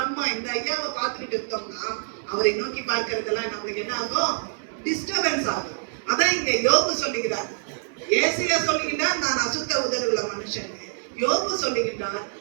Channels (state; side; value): silent; left; 61 dB below the other